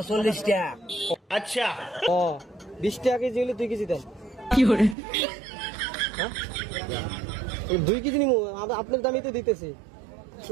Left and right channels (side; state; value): left; drops out; at 5.0 s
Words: 40 টাকা। আচ্ছা ও 20 টাকা কেজি হলে 2 কেজি দেন। কি করে? হ্যাঁ 2 কেজি নিমু, আপনার দামই তো দিতেছি।